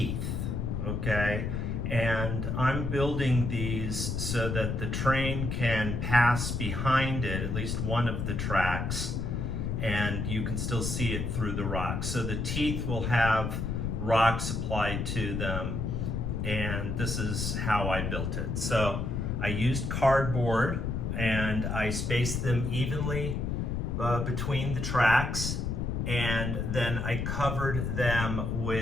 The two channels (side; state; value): left; noise; rumble, 1 dB below the sound